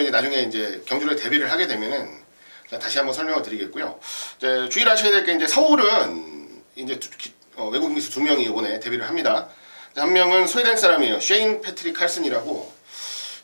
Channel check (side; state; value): both; inverted; correlation -1.00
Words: 이제 나중에 이제 경주를 데뷔를 하게 되면은 다시 한번 설명을 드리겠고요. 이제 주의하셔야 될 게 이제 서울은 이제 외국인 기수 2명이 이번에 데뷔를 합니다. 한 명은 스웨덴 사람이에요. 쉐인 패트릭 칼슨이라고